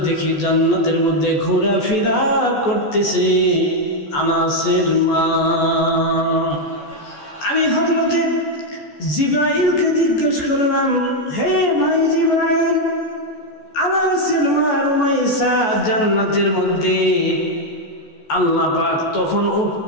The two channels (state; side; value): late; right; 14 ms